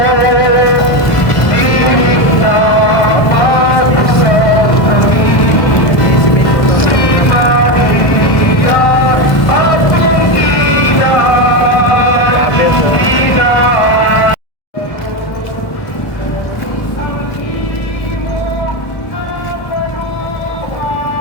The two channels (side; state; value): right; late; 1.2 ms